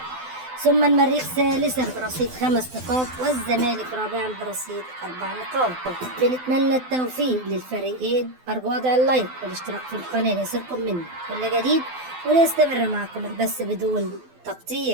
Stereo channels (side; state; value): left; late; 12 ms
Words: ثم المريخ ثالثا برصيد 5 نقاط، والزمالك رابعا برصيد 4 نقاط. بنتمنى التوفيق للفريقين. أرجو وضع اللايك والاشتراك في القناة ليصلكم مني كل جديد، وليستمر معكم البث بدون